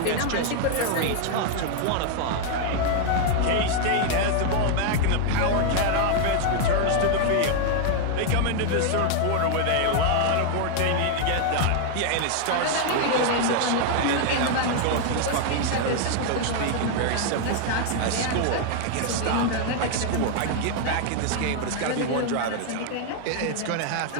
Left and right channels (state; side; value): different; both; correlation 0.00